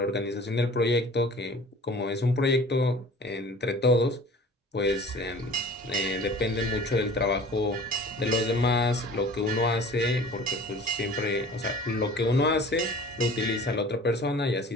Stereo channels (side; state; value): both; normal; correlation 0.45